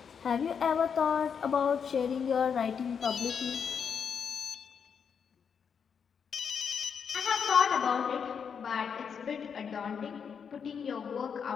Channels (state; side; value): quieter; right; 6.8 dB